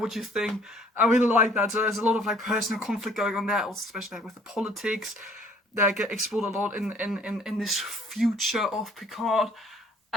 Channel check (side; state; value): both; normal; correlation 0.58